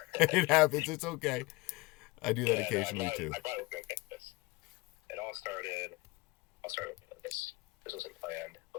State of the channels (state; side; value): quieter; right; 23.0 dB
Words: It happens. It's okay. I do that occasionally, too. I brought it with me. It all started with this. This wasn't planned,